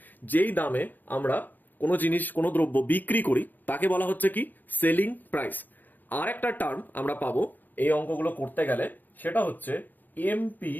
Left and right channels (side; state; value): right; late; 0.086 ms